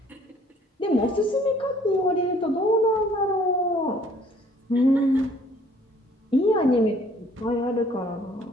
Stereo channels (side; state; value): both; normal; correlation 0.58